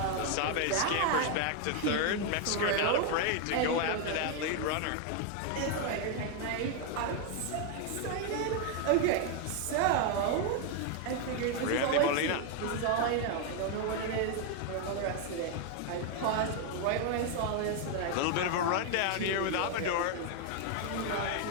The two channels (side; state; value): both; different; correlation 0.01